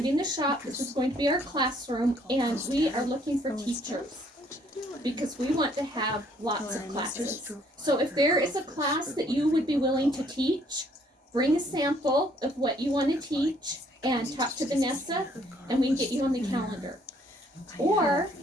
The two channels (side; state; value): both; normal; correlation 0.64